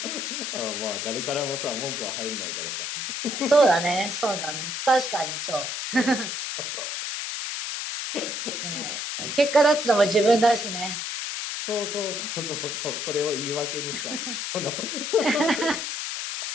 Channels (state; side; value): noise; left; hiss, 4 dB below the sound